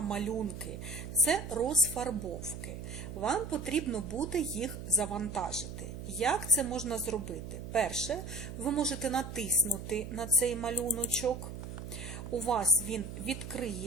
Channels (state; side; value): noise; right; hum, 8 dB below the sound